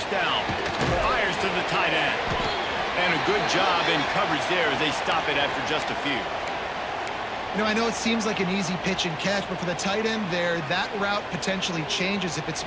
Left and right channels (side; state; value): both; identical; correlation 1.00